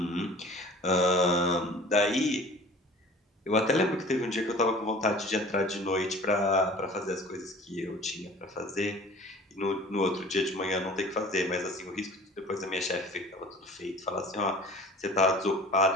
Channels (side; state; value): both; normal; correlation 0.45